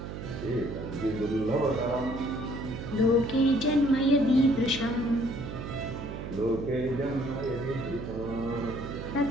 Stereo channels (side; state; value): right; noise; hum, 8 dB below the sound